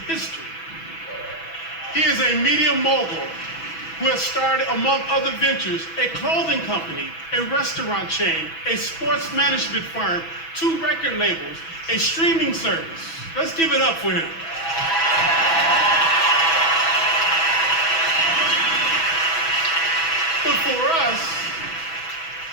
history. He is a media mogul who has started, among other ventures, a clothing company, a restaurant chain, a sports management firm, 2 record labels, a streaming service. Let's give it up for him. But for us,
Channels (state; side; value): late; right; 6.1 ms